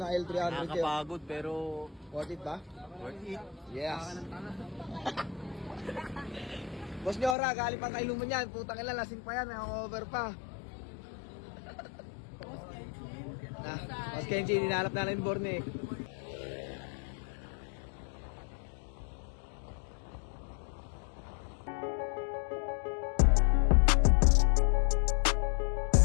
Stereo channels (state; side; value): drops out; right; at 7.4 s